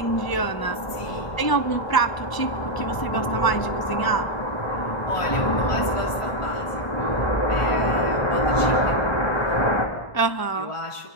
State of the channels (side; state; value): right; late; 1.0 ms